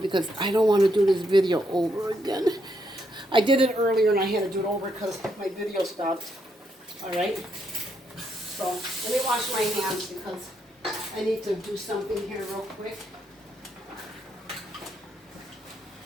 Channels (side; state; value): both; normal; correlation 0.77